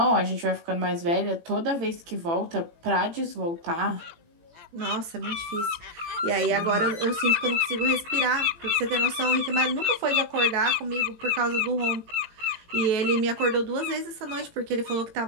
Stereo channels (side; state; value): left; late; 18 ms